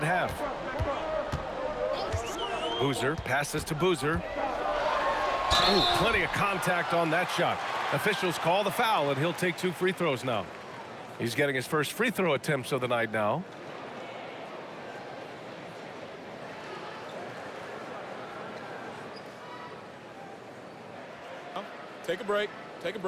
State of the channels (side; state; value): both; identical; correlation 1.00